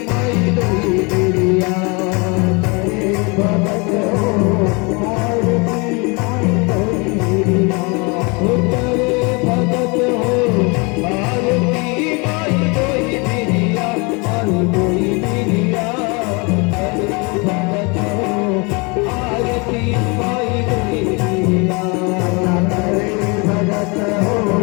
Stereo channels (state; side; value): quieter; right; 29.7 dB